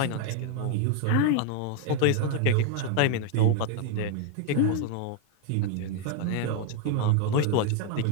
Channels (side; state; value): both; different; correlation 0.01